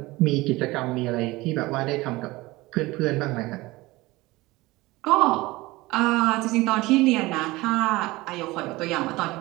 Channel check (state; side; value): quieter; left; 20.4 dB